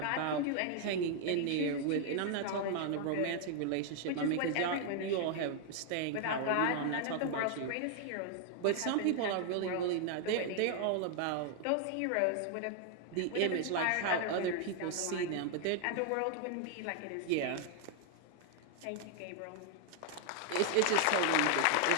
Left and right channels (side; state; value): both; different; correlation 0.00